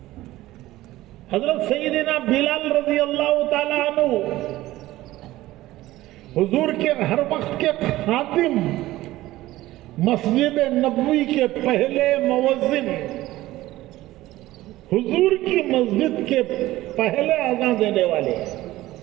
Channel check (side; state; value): left; quieter; 16.6 dB